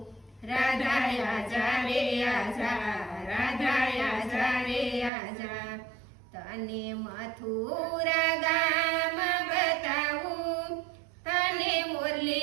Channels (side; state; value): left; drops out; at 5.1 s